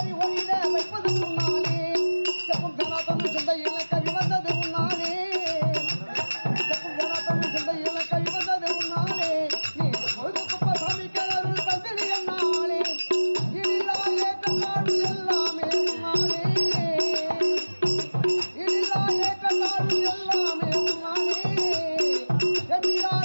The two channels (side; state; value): both; inverted; correlation -1.00